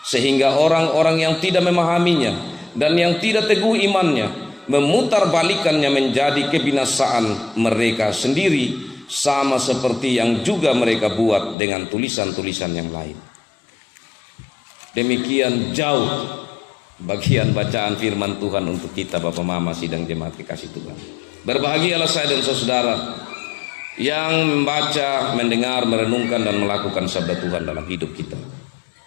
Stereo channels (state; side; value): drops out; right; at 11.6 s